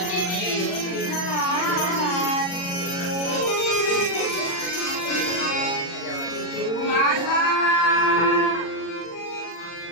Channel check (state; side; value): late; right; 40 ms